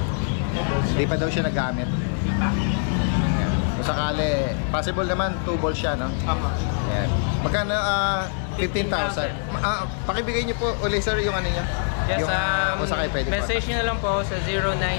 Hindi pa daw siya nagamit. Hindi pa. Kung sakali, possible naman 2 balls siya, no? Ayan. Magkano? 15,000. Pakibigay niyo po ulit, sir, yung ano niya. Yes, yung, kung sakali pwede message nyo na lang po sa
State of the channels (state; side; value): silent; right; 60 dB below the other